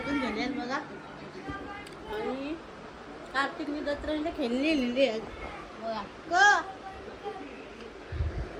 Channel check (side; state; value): both; identical; correlation 1.00